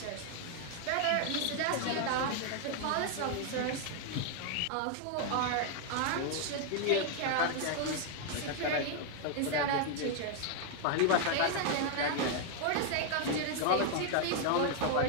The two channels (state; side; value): different; both; correlation 0.00